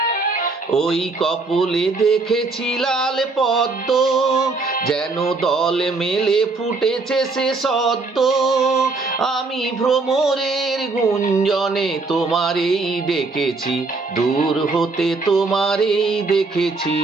ওই কপলে দেখেছি লাল পদ্ম, যেন দল মেলে ফুটেছে সে সদ্য। আমি ভ্রমরের গুঞ্জনে তোমারেই ডেকেছি, দূর হতে তোমারেই দেখেছি,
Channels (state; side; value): quieter; left; 3.7 dB